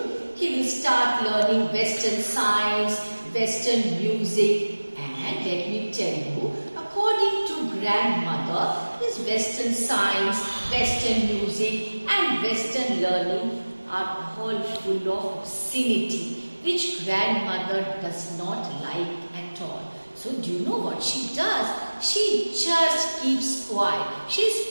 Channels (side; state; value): both; inverted; correlation -1.00